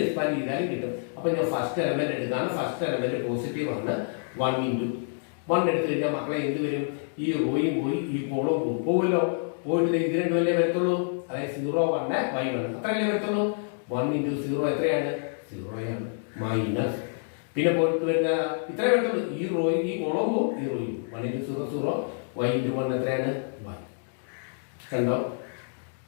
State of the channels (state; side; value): silent; right; digital silence